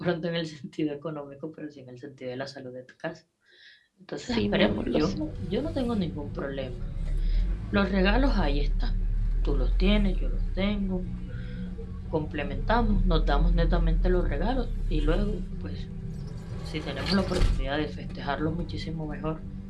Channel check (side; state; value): both; identical; correlation 1.00